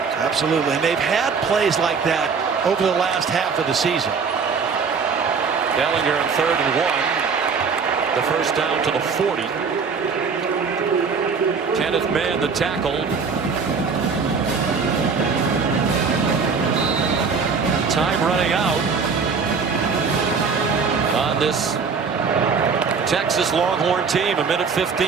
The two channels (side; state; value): left; quieter; 5.4 dB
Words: Absolutely. And they've had plays like that over the last half of the season. Ellinger on 3rd and 1. The first down to the 40. Kenneth Mann, the tackle. Time running out on this Texas Longhorn team.